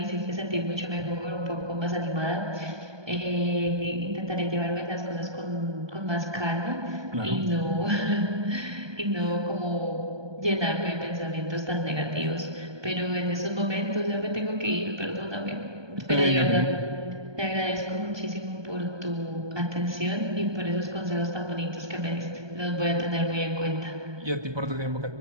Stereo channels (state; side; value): late; left; 1.2 ms